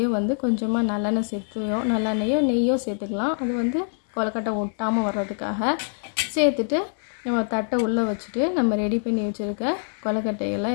வந்து கொஞ்சமாக நல்லெண்ணெயோ நெய்யோ சேர்த்துக்கலாம். அது வந்து கொலக்கட்டை ஒட்டாமல் வர்றதுக்காக சேர்த்துட்டு நம்ம தட்டை உள்ளே வச்சுட்டு நம்ம ரெடி பண்ணி வச்சுருக்க கொலக்கட்டைகளை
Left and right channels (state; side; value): silent; right; digital silence